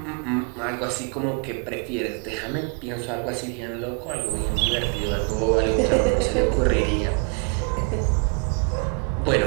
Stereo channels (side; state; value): left; quieter; 35.1 dB